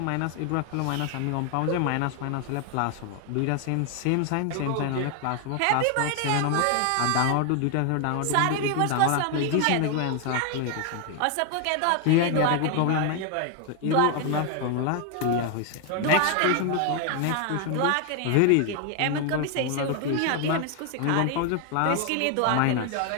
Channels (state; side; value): different; both; correlation 0.00